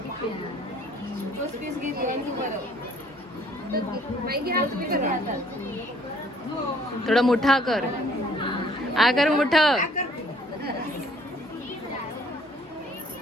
पीस घेतली आणि तू बरं बाई घ्या तुम्ही करा. थोडा मोठा कर. आकर मोठं.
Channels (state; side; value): normal; both; correlation 0.59